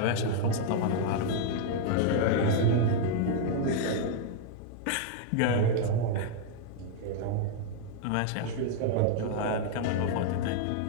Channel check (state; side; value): different; both; correlation -0.01